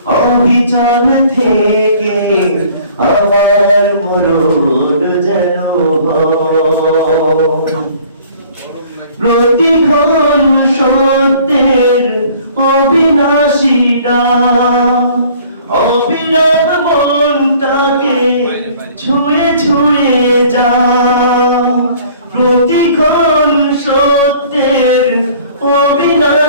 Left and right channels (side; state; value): both; inverted; correlation -0.53